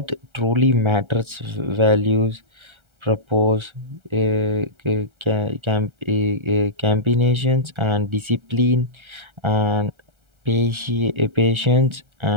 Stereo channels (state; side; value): late; left; 1.3 ms